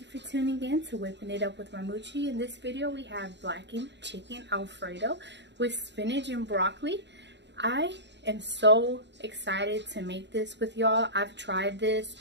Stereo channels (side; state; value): left; late; 0.51 ms